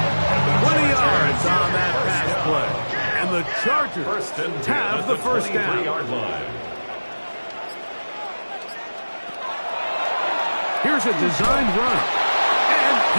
20 yards on that pass play. And the Chargers have the 1st down. Here's a designed run. And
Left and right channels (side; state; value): both; inverted; correlation -1.00